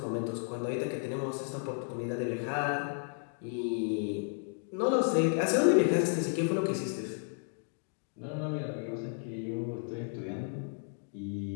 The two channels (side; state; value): right; silent; 56 dB below the other